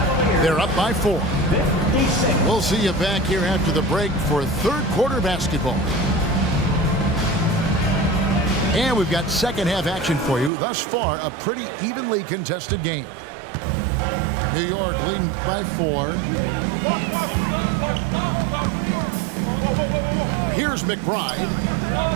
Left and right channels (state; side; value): drops out; left; at 10.5 s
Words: They're up by 4. We'll see you back here after the break for third quarter basketball. And we've got second half action for you. Thus far, a pretty evenly contested game. New York leading by 4. Here's McBride.